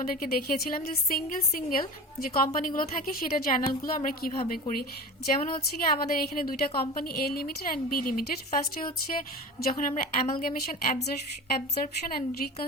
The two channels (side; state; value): both; normal; correlation 0.33